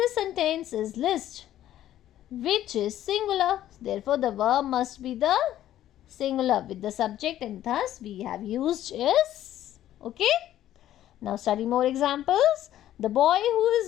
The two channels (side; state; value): right; quieter; 12.5 dB